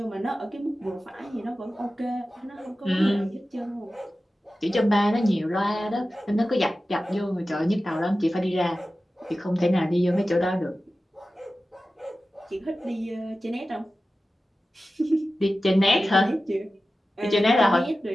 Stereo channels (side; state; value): both; normal; correlation 0.95